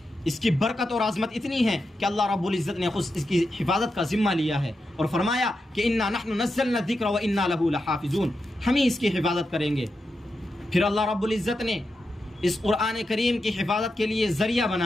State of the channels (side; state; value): both; normal; correlation 0.88